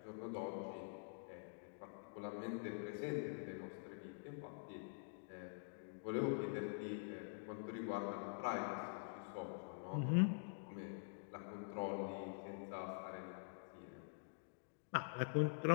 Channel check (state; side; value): silent; right; digital silence